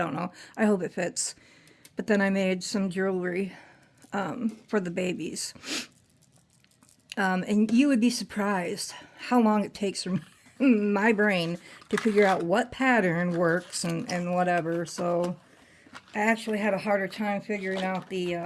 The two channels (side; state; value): both; identical; correlation 1.00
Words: know. I hope it fits. But then I made some jewelry for the babies. And you would be surprised how long it takes for my brain to figure out what pattern works and whatever. So I actually had a harder time figuring out